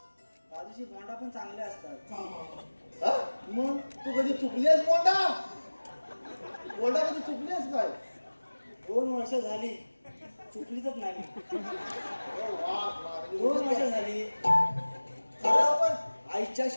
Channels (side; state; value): both; inverted; correlation -1.00